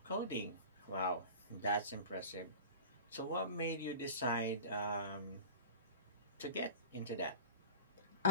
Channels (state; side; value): inverted; both; correlation -0.38